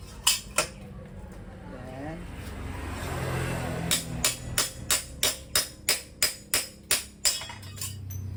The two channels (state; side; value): identical; both; correlation 1.00